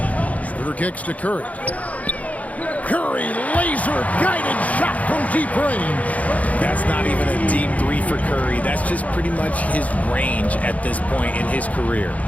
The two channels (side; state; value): right; late; 0.070 ms